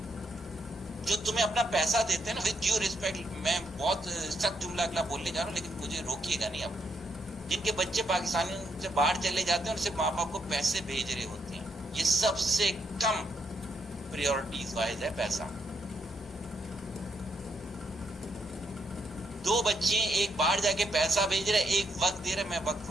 جو تمہیں اپنا پیسہ دیتے ہیں نا، وتھ ڈیو ریسپیکٹ، میں بہت سخت جملہ اگلا بولنے جا رہا ہوں لیکن مجھے روکیے گا نہیں اب، جن کے بچے پاکستانیوں سے باہر چلے جاتے ہیں اور صرف ماں باپ کو پیسے بھیج رہے ہوتے ہیں، یہ سب سے کم پریورٹیز وائز ہے پیسہ۔ دو بچے ایک باہر جا کے پیسہ بھیج رہے، ایک وقت دے رہے، میں وقت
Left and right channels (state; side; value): normal; both; correlation 0.78